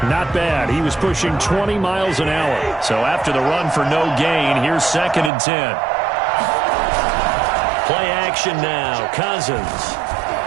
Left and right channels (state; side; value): drops out; left; at 5.3 s